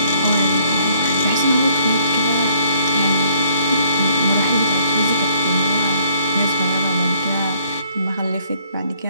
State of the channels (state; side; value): inverted; both; correlation -0.64